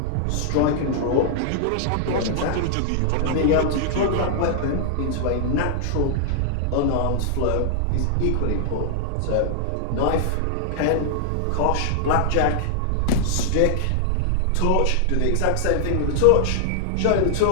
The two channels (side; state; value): both; different; correlation -0.01